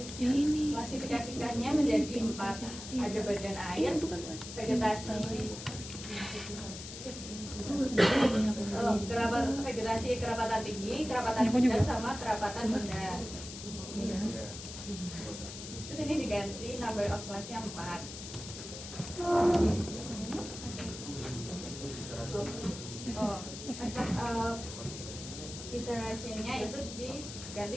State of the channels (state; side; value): noise; left; hiss, 10 dB below the sound